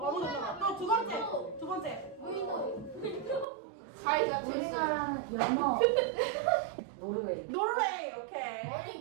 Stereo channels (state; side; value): drops out; left; at 3.5 s